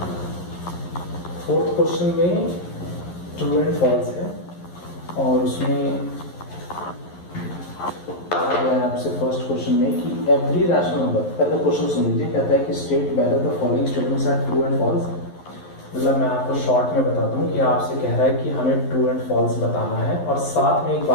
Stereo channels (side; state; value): right; late; 11 ms